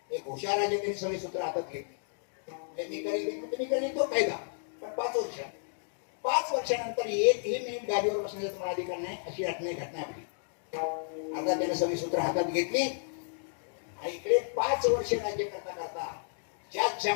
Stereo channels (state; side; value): silent; right; digital silence